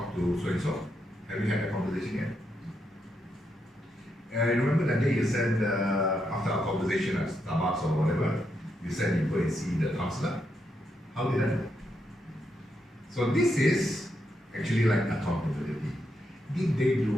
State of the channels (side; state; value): both; normal; correlation 0.81